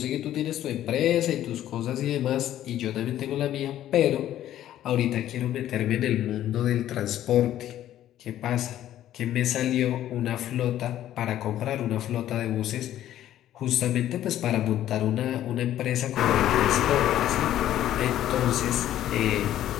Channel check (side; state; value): right; quieter; 12.4 dB